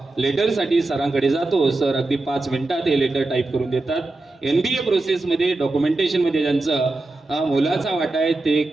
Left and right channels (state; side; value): quieter; left; 3.1 dB